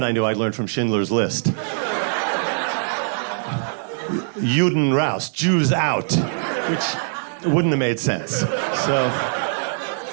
I knew I'd learned from Schindler's List. Juden raus, Jews out, which wouldn't have made sense. So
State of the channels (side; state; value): left; silent; digital silence